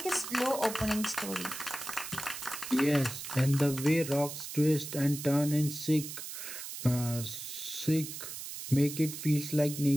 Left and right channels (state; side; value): noise; right; hiss, 8 dB below the sound